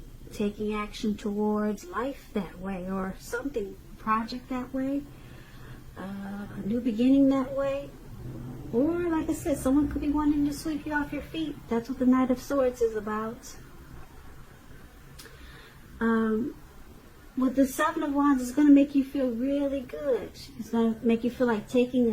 taking action towards life that way, or something, project that way, a new beginning that way. Or like I said, someone could be wanting to sweep you off your feet. That's what the Knight of Swords is about. With the Seven of Wands, it's going to make you feel really good. It's going to make you feel like taking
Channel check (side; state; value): both; identical; correlation 1.00